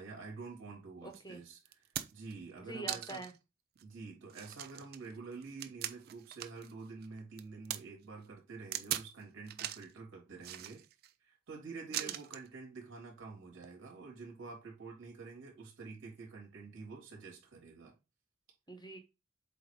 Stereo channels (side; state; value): left; quieter; 7.0 dB